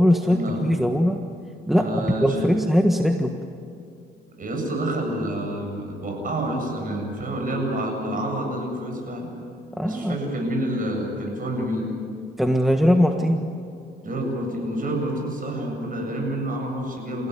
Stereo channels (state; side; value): normal; both; correlation 0.79